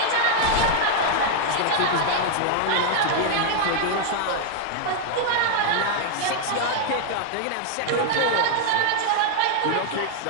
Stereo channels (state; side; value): different; both; correlation 0.00